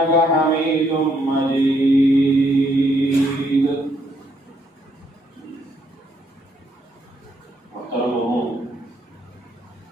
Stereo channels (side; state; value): both; normal; correlation 0.72